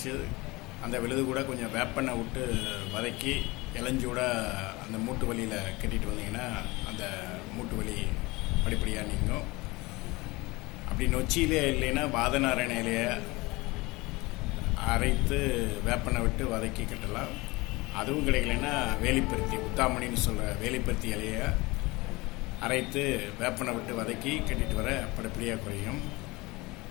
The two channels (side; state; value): right; quieter; 22.8 dB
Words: அந்த விழுது கூட கொஞ்சம் வேப்பெண்ணெய் விட்டு வதக்கி இளஞ்சூட அந்த மூட்டு வலியில் கட்டிட்டு வந்தீங்கன்னா அந்த மூட்டு வலி படிப்படியாக நீங்கும். அப்படி நொச்சியிலே இல்லைன்னா வாதநாராயண இலையை அரைத்து வேப்பெண்ணெய் விட்டு வதக்கி கட்டலாம். அதுவும் கிடைக்கலன்னா வேலிப்பருத்தி, உத்தாமணின்னு சொல்கிற வேலிப்பருத்தி இலையை அரைத்து வேப்பெண்ணெய் விட்டு வதக்கி கட்டிட்டு வர படிப்படியாக குறையும்.